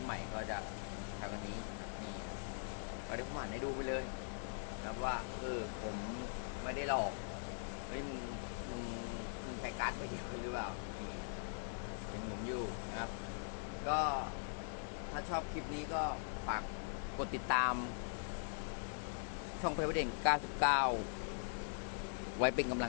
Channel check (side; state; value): right; silent; digital silence